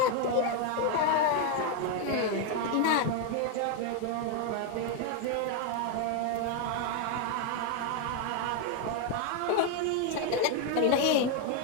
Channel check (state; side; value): different; both; correlation 0.01